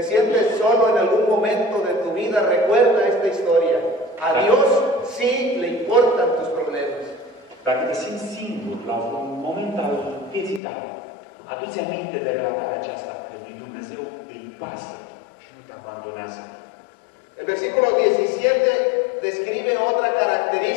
sientes solo en algún momento de tu vida, recuerda esta historia. A Dios sí le importan tus problemas. Dacă te simți singur la un moment al vieții tale, adu-ți aminte de relatarea aceasta, că lui Dumnezeu îi pasă și nu te abandonează. El versículo 17 describe otra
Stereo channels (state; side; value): drops out; right; at 10.6 s